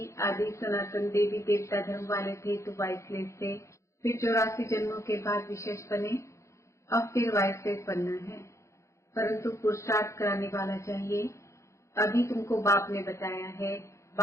आदि सनातन देवी देवता धर्म वाले थे तो वाइसलेस थे, फिर 84 जन्मों के बाद विशेष बने, अब फिर वाइसलेस बनना है, परंतु पुरुषार्थ कराने वाला चाहिए। अभी तुमको बाप ने बताया है,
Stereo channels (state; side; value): late; right; 0.14 ms